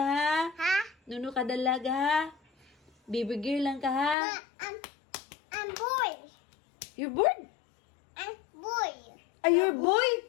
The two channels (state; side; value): drops out; right; at 4.2 s